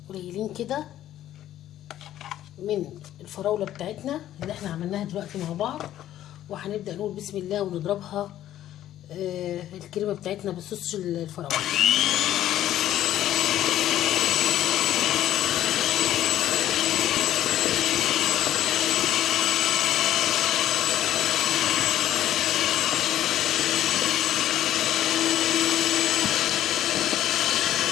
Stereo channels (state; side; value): quieter; right; 12.4 dB